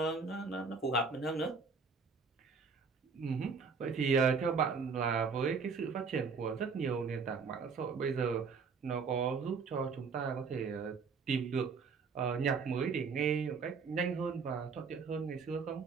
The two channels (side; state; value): left; quieter; 5.2 dB